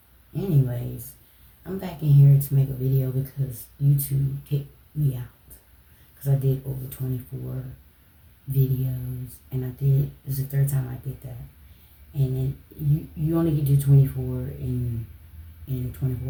Anyways, I'm back in here to make a video because YouTube kicked me out. Because I did over 24 videos, and I did, this is the third time I did that. And then you only get to 24 in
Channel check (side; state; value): both; identical; correlation 1.00